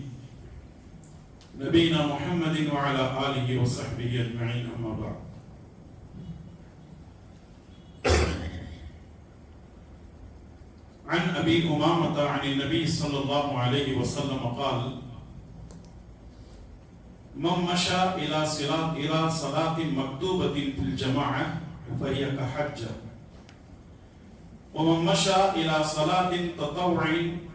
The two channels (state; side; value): identical; both; correlation 1.00